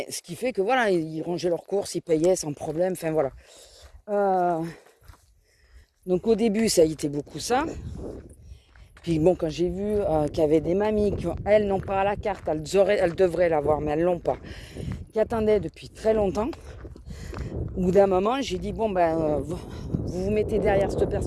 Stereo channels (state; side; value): identical; both; correlation 1.00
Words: ce qui fait que voilà, ils rangeaient leurs courses, ils payaient sans problème, enfin voilà. Donc au début, ça a été beaucoup ça. Puis bon, quand j'ai vu qu'il y avait des mamies qui, elles, n'ont pas la carte, elles devraient l'avoir, mais elles l'ont pas, qui attendaient depuis très longtemps. Au bout d'un moment, j'ai dit, vous mettez derrière cette